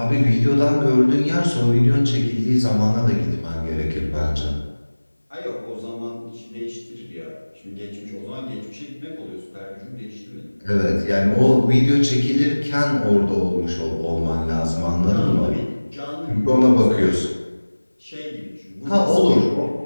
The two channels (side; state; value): both; inverted; correlation -1.00